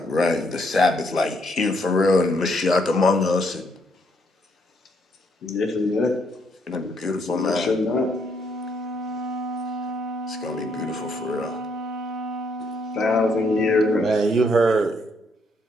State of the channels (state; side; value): normal; both; correlation 0.72